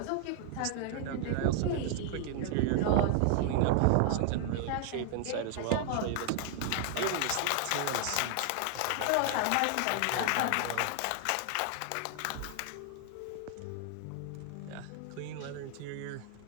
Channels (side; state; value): both; different; correlation 0.00